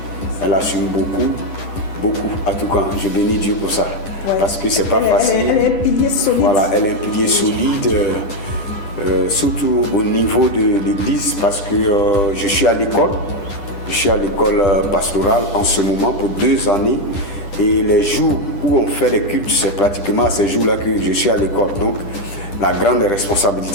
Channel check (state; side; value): late; right; 10 ms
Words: Elle assume beaucoup. En tout cas, je bénis Dieu pour ça. Ouais. Parce que c'est pas facile. Elle est un pilier solide. Voilà, elle est un pilier solide, surtout au niveau de l'église, parce que je suis à l'école. Je suis à l'école pastorale en ce moment pour 2 années. Et les jours où on fait les cultes, c'est pratiquement à ces jours-là que je suis à l'école. Donc, la grande